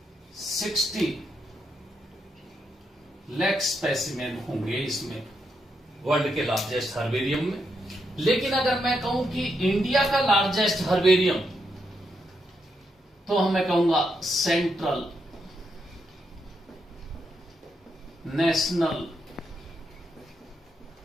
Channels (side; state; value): both; normal; correlation 0.81